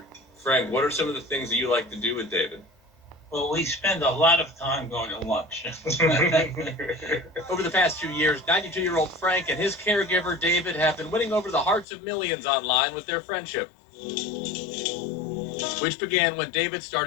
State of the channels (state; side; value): drops out; right; at 11.9 s